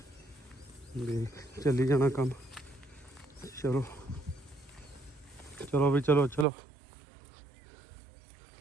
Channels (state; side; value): drops out; left; at 6.5 s